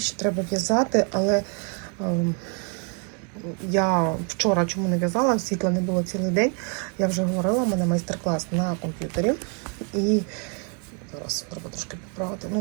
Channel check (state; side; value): quieter; left; 38.3 dB